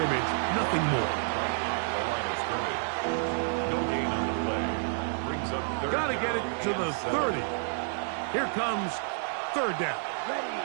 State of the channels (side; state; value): left; silent; 58 dB below the other